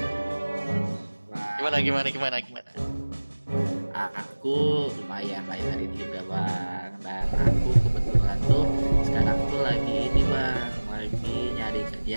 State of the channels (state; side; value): inverted; both; correlation -1.00